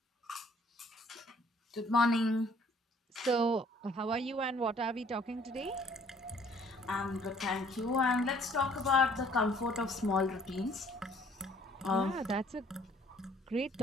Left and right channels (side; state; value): both; normal; correlation 0.59